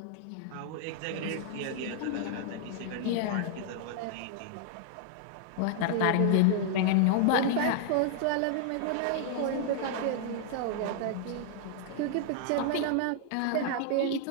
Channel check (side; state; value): both; different; correlation -0.01